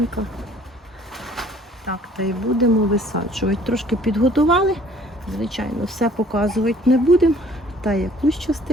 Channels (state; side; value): normal; both; correlation 0.55